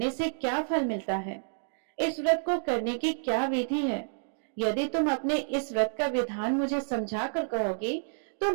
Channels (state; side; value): silent; left; digital silence